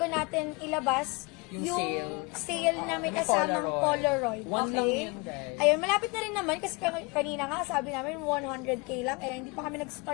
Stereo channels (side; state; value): right; quieter; 28.2 dB